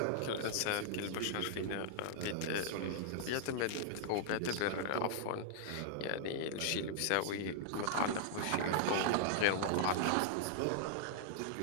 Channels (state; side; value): different; both; correlation -0.01